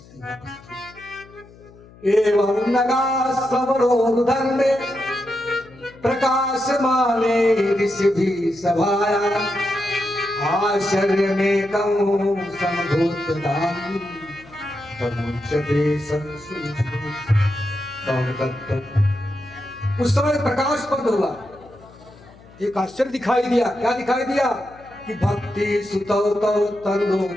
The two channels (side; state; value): left; noise; hum, 23 dB below the sound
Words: वापस थी। एवं नगा समरोधर्मे प्रकाश माने ऋषि भी सभाया, आश्चर्य में कौं समभूत दानी, उस समय प्रकाश बंद हुआ। एक आश्चर्य दिखाई दिया। क्या दिखाई दिया? कि भक्ति सुतौ तौ तरुणो